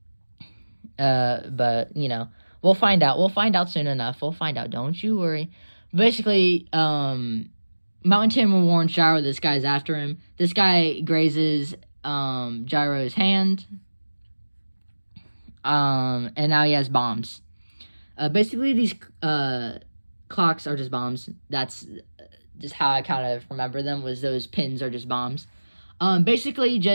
But we'll find out. We'll find out soon enough. We'll find out. Don't you worry. Basically, Mountain Tim warns Gyro this guy's after him. This guy grazes Gyro's hand. And now he has bombs. Basically, these clocks are just bombs. That's just how I kind of remember them, was those pins are just bombs. Basically,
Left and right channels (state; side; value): inverted; both; correlation -1.00